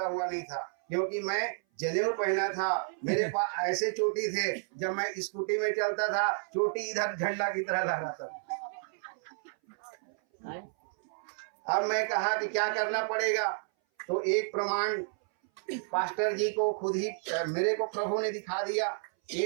हुआ नहीं था, क्योंकि मैं जनेऊ पहना था, मेरे पास ऐसे चोटी थे, जब मैं स्कूटी में चलता था चोटी इधर झंडा की तरह लहराता था। अब मैं कहा कि क्या करना पड़ेगा, तो एक प्रमाण पास्टर जी को खुद ही मेरे को प्रभु ने दिखा दिया।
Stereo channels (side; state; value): left; silent; 57 dB below the other